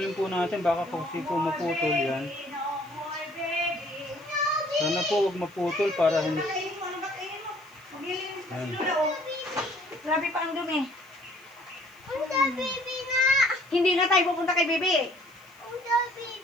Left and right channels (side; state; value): left; noise; hiss, 30 dB below the sound